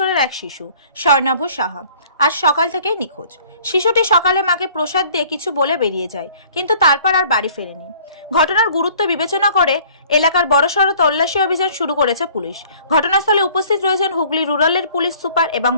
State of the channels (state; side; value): inverted; both; correlation -0.54